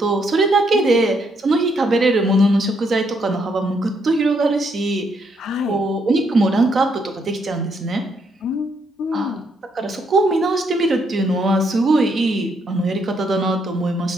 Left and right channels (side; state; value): both; normal; correlation 0.74